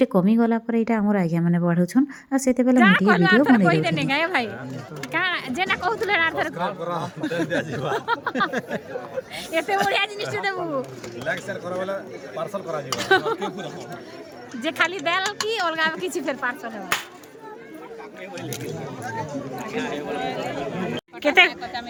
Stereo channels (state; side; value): identical; both; correlation 1.00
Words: कमी गला पर एटा हमर आज्ञा माने बढ़ौ छन आ सेते बेले मीडिया वीडियो बनै देने गए भाई का जेना कहतुले आर एते बढ़िया जिनिस देबू लाइक शेयर करो वाला पार्सल करा जीवा जे खाली दाल की अलगा किछि फेर पार्सल है केते